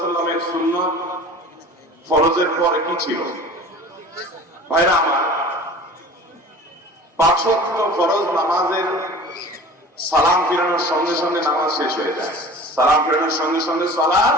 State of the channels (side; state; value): both; normal; correlation 0.42